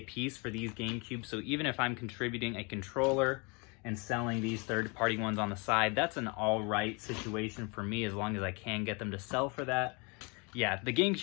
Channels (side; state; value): right; quieter; 30.7 dB